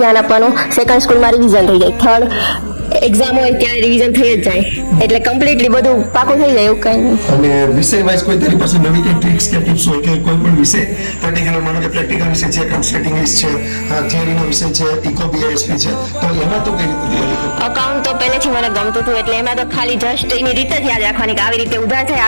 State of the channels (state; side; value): inverted; both; correlation -1.00